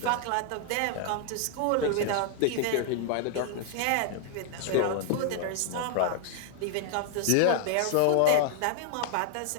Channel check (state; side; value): different; both; correlation -0.01